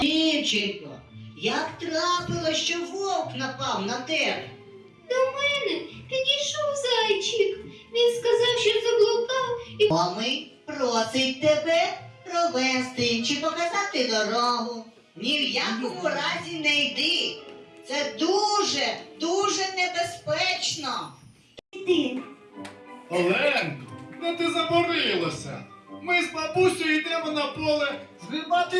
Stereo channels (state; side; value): identical; both; correlation 1.00